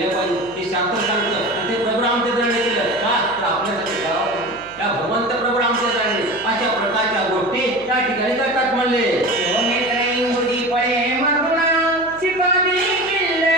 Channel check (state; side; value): noise; left; hum, 24 dB below the sound